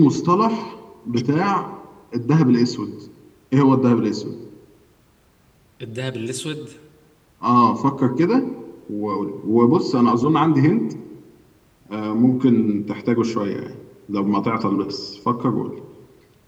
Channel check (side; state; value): both; identical; correlation 1.00